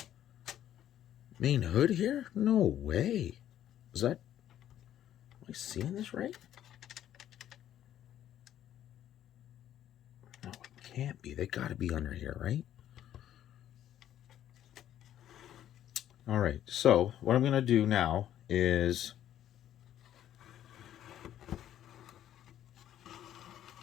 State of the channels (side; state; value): right; quieter; 11.4 dB